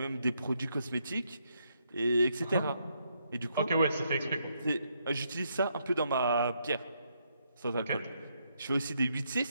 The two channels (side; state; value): both; inverted; correlation -0.76